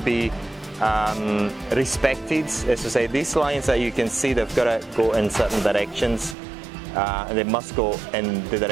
respected. As to say, these lines that you can see, they've got to go in certain directions. And they must go in the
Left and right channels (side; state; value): left; drops out; at 6.4 s